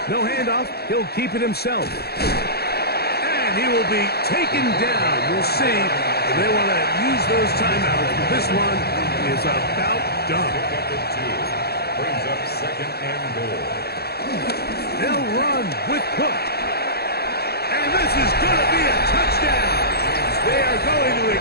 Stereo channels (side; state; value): right; late; 0.46 ms